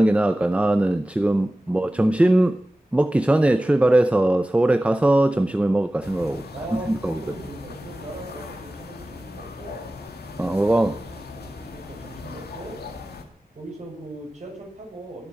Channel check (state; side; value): normal; both; correlation 0.96